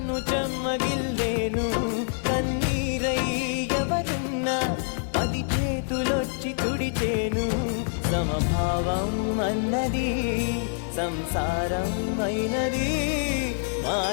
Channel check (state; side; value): silent; right; 61 dB below the other